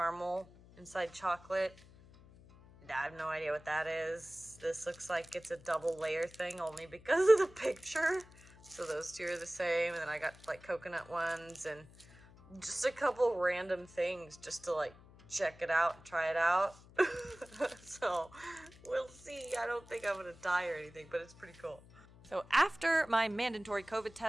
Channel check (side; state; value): left; noise; hum, 22 dB below the sound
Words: inside chocolate. I have no idea what that is. This looks like it's a double layer thing only because of the picture. So those two are the same. And then I got like coconut ones and just a couple random things just to like check it out and try it out. So we'll see. I don't think I'm gonna die or anything, but it's pretty cool. So after my mandatory COVID